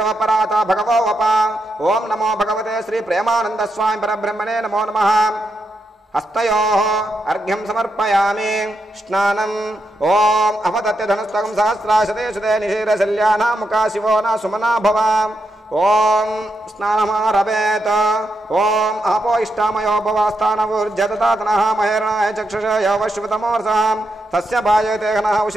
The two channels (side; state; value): both; normal; correlation 0.83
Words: भगवो वपा। ओं नमो भगवते श्री प्रेमानंद स्वामी परब्रह्मणे नमो नमः। हस्तयोः अर्घ्यं समर्पयामि स्नानम्। ओम अपतत्य धनुस्तकं सहस्राशते शुते निशीरशल्याना मुखा शिवो न सुमना भव। ओम स्नानमारभेत। ओम आपो इष्टामयो भवास्थानवुर्जततातनः महेरणाय चक्षुषय वश्वतमोर्षः तस्य भाजयते घनः